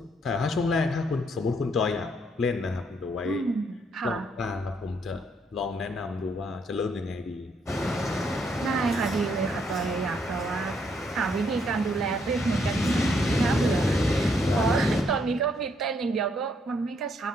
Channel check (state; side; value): normal; both; correlation 0.72